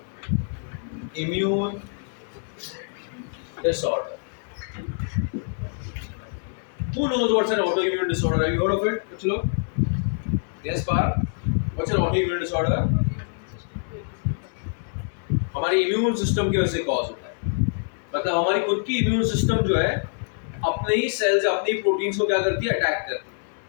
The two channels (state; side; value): silent; right; 62 dB below the other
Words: disorder. Who knows what's an autoimmune disorder? Have you heard of it? कुछ लोग? Yes, Par. What's an autoimmune disorder? हमारी immune system की वजह से cause होता है. मतलब हमारी खुद की इम्यून सिस्टम जो है अपने ही सेल्स अपने ही प्रोटीन्स को क्या करती है? अटैक करती है.